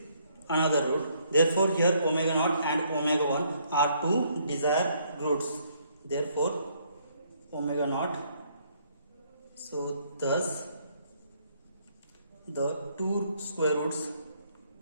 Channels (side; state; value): both; inverted; correlation -0.68